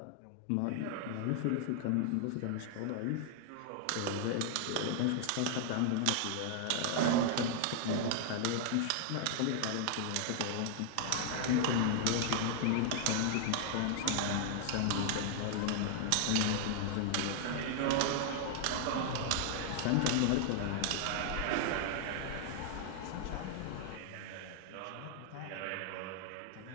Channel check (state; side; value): different; both; correlation 0.00